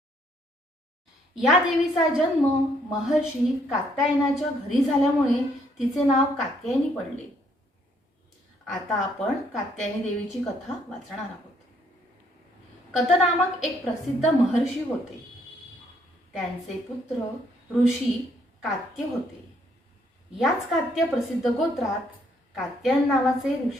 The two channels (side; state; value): both; normal; correlation 0.69